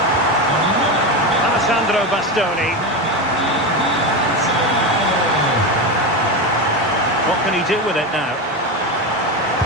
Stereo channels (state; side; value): normal; both; correlation 0.17